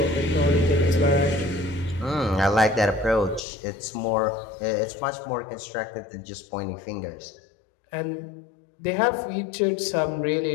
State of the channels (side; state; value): right; drops out; at 3.4 s